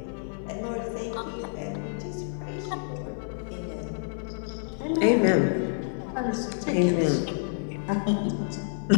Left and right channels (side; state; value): right; silent; 56 dB below the other